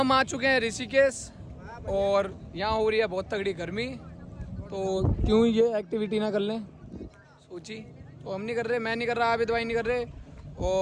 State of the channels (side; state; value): both; identical; correlation 1.00